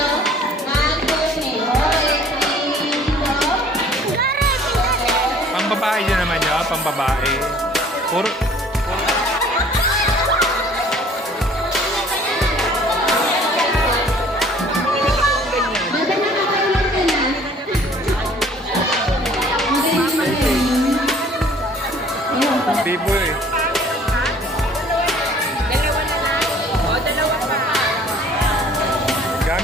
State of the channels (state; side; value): normal; both; correlation 0.54